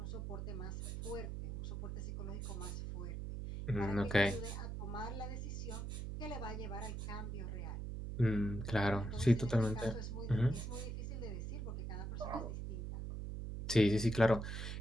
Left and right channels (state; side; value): noise; right; hum, 5 dB below the sound